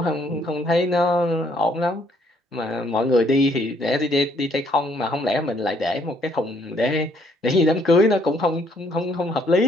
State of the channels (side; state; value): both; normal; correlation 0.67